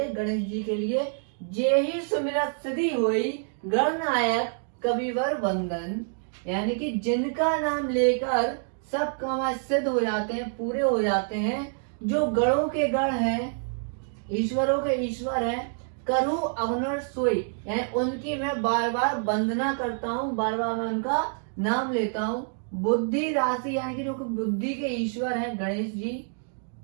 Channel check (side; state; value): left; silent; 60 dB below the other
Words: गणेश जी के लिए। जे ही सुमिरत सिद्धि हुई, गणनायक कविवर वंदन, यानी कि जिनका नाम लेकर सब काम सिद्ध हो जाते हैं, पूरे हो जाते हैं। जो गणों के गण हैं, ईश्वरों के ईश्वर हैं। करहु अवनर सोई, यानी उनकी मैं बार बार वंदना करता हूँ, बार बार मैं उनका नाम लेता हूँ। बुद्धि राशि, यानी कि जो बुद्धि के ईश्वर हैं गणेश जी।